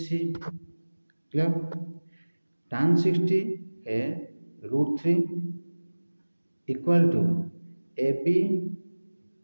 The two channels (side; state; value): both; inverted; correlation -1.00